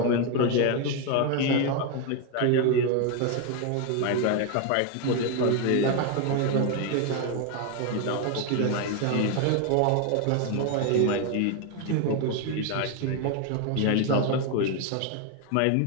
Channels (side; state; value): both; different; correlation 0.01